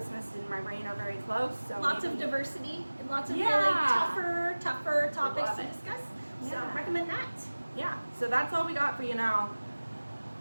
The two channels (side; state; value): both; inverted; correlation -1.00